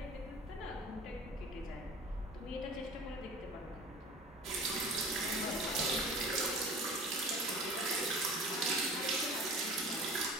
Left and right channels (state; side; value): normal; both; correlation 0.41